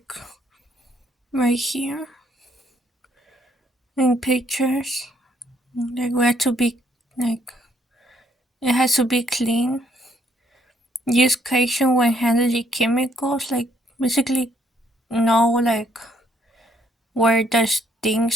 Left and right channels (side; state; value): both; normal; correlation 0.69